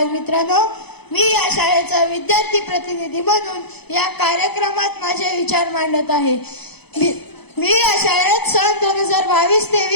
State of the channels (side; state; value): right; late; 0.98 ms